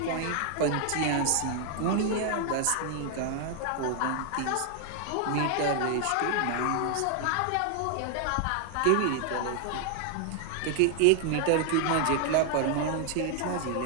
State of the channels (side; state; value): both; different; correlation 0.00